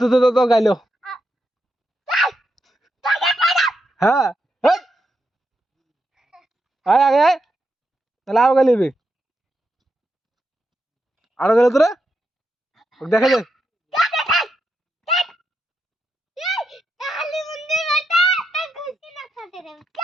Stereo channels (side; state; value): both; normal; correlation 0.84